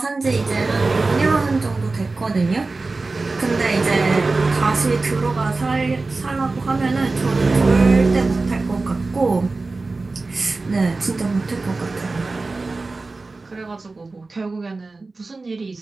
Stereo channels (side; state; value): left; quieter; 3.6 dB